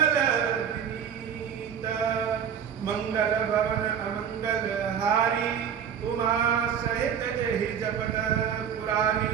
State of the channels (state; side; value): quieter; left; 8.1 dB